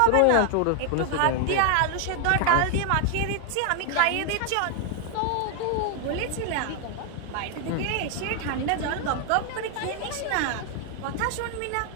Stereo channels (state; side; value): different; both; correlation 0.00